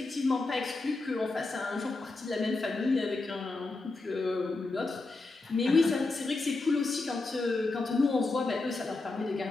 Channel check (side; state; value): right; quieter; 3.4 dB